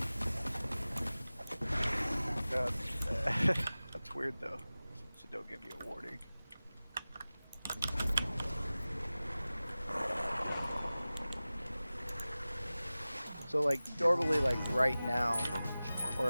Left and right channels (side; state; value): both; inverted; correlation -0.97